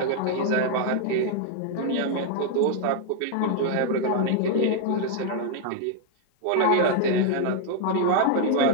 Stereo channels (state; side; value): different; both; correlation 0.00